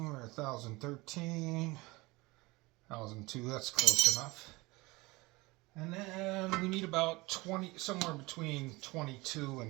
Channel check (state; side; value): quieter; left; 22.7 dB